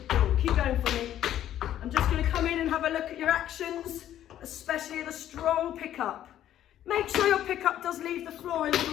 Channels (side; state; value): right; quieter; 11.7 dB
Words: keep going for me. I'm just gonna come in and have a look at your actions, especially the strong pickup. Make sure your pickup does leave the floor a